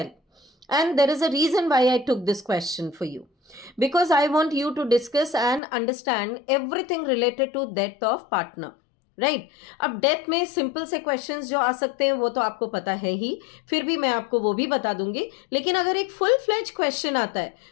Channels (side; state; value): right; drops out; at 5.6 s